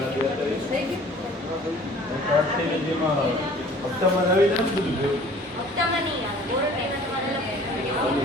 હપ્તામાં નહીં આવે વોરંટીના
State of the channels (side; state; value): both; normal; correlation 0.50